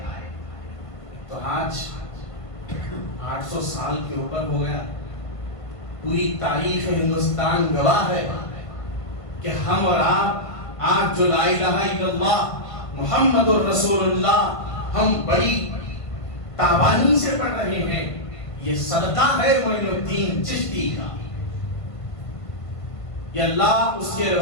تو آج 800 سال کے اوپر ہو گیا، پوری تاریخ ہندوستان گواہ ہے کہ ہم اور آپ آج جو لا الہ الا اللہ محمد الرسول اللہ ہم بڑی تابانی سے پڑھ رہے ہیں، یہ صدقہ ہے معین الدین چشتی کا۔ یہ اللہ اس کے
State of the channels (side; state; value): right; late; 1.5 ms